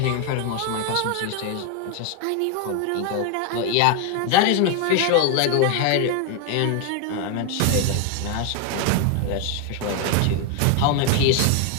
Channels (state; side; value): different; both; correlation 0.01